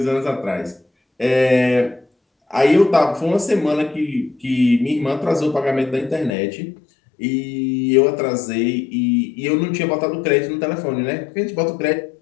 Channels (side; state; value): right; drops out; at 6.4 s